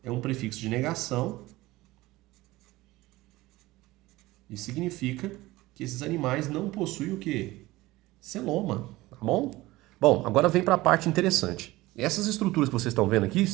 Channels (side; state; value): left; quieter; 18.9 dB